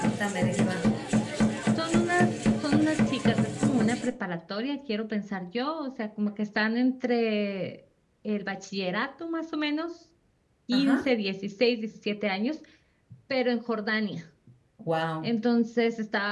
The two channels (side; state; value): both; identical; correlation 1.00